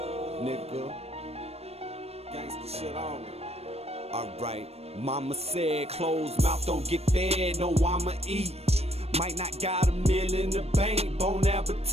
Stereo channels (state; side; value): late; left; 0.30 ms